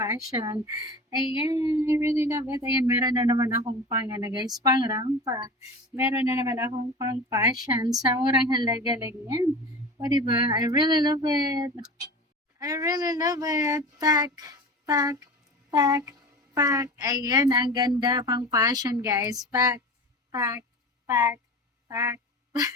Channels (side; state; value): both; normal; correlation 0.33